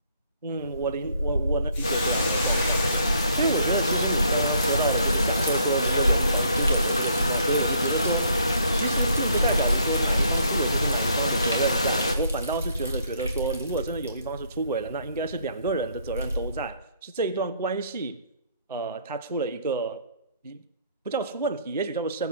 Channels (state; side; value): inverted; both; correlation -0.66